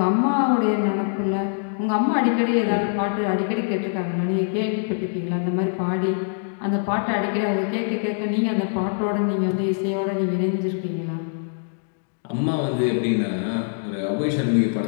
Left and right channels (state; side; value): silent; right; digital silence